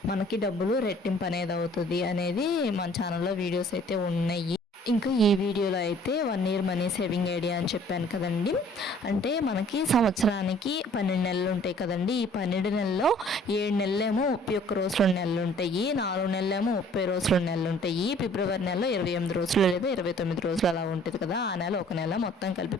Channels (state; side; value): normal; both; correlation 0.55